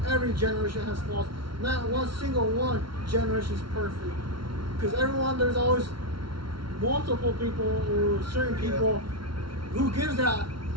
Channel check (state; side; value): late; left; 0.74 ms